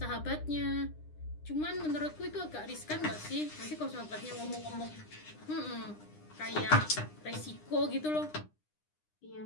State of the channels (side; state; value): right; late; 9.8 ms